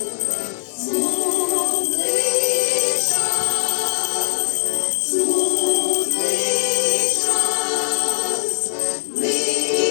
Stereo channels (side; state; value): right; silent; digital silence